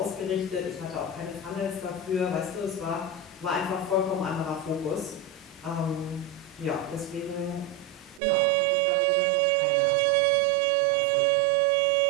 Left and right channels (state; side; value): drops out; left; at 8.2 s